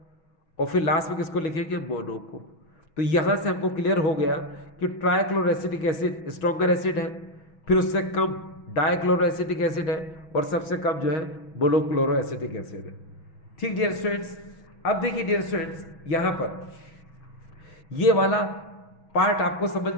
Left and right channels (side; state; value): right; late; 6.2 ms